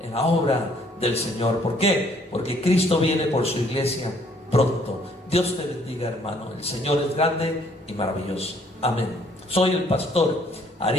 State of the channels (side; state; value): both; normal; correlation 0.63